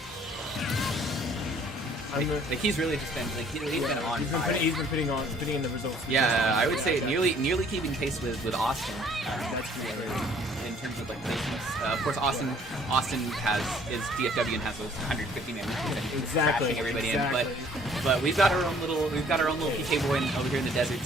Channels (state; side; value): normal; both; correlation 0.58